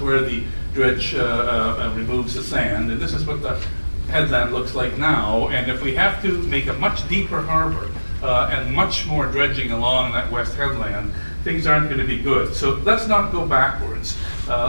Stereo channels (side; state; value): both; inverted; correlation -1.00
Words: the dredge removes the sand. And this is what the headland looks like now. And if we have to make a much deeper harbor and much more dredging along that west headland, things aren't going to be good. So let's not go backwards.